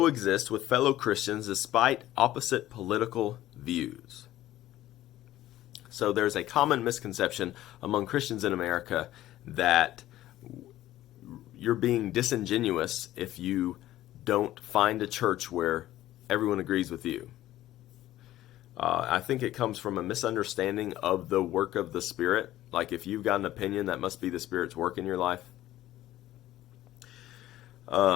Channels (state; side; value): quieter; right; 14.4 dB